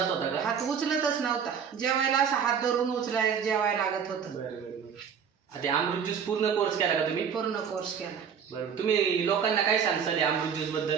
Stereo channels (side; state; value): left; quieter; 7.3 dB